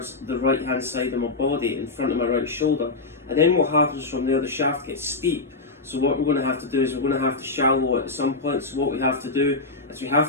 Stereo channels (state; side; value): quieter; right; 3.6 dB